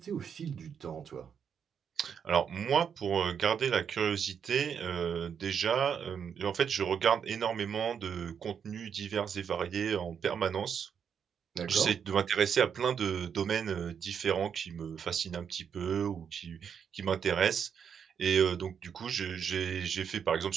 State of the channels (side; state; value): left; quieter; 7.4 dB